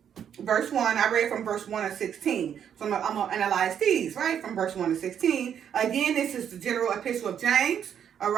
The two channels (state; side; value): quieter; left; 8.7 dB